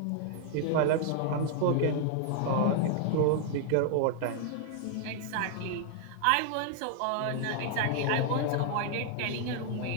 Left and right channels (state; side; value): different; both; correlation 0.00